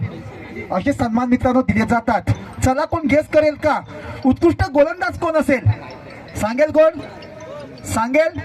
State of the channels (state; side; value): identical; both; correlation 1.00